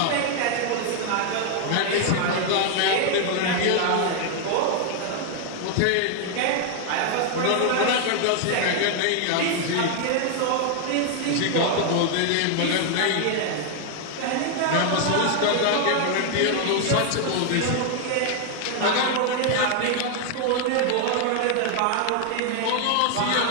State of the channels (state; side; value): different; both; correlation 0.00